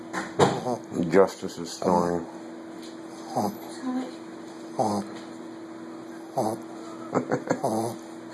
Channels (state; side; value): identical; both; correlation 1.00